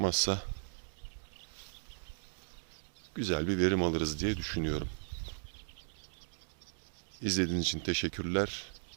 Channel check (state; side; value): silent; left; digital silence